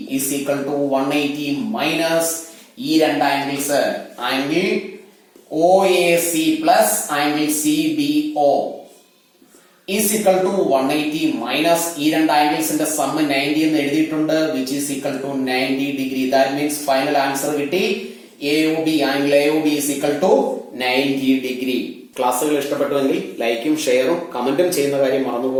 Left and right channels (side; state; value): both; identical; correlation 1.00